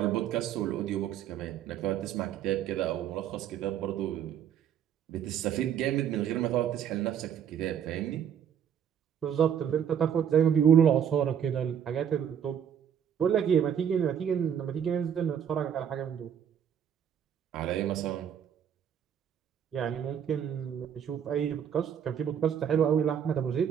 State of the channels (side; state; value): left; quieter; 8.8 dB